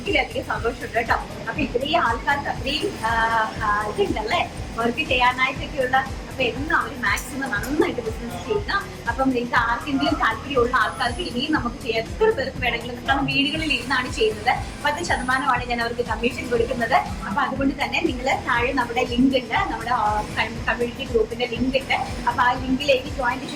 സന്തോഷമുണ്ട് കേട്ടോ. അപ്പൊ ഇത്രയും ആൾക്കാർക്ക് അത്രയും ഇതുണ്ടല്ലേ വർക്ക് ചെയ്യാനായിട്ടൊക്കെയുള്ള. അപ്പൊ എന്നും അവർ മാക്സിമം നന്നായിട്ട് ബിസിനസ് ചെയ്യുക. അപ്പം നിങ്ങൾക്ക് ആർക്കെങ്കിലും താല്പര്യമുള്ള ആൾക്കാർക്ക് ഇനിയും നമുക്ക് എത്ര പേർക്ക് വേണമെങ്കിലും, കാരണം വീടുകളിൽ ഇരുന്നാണ് ചെയ്യുന്നത്. 10% ഞാൻ അവർക്ക് കമ്മീഷൻ കൊടുക്കുന്നത്. അപ്പൊ അതുകൊണ്ട് തന്നെ നിങ്ങൾ താഴെ നമ്മുടെ ലിങ്ക് ഉണ്ട്, നമ്മുടെ കമ്മ്യൂണിറ്റി ഗ്രൂപ്പിന്റെ ലിങ്ക് ഉണ്ട്. അപ്പൊ ആ ലിങ്കിലേക്ക് ജോയിൻ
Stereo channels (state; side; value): identical; both; correlation 1.00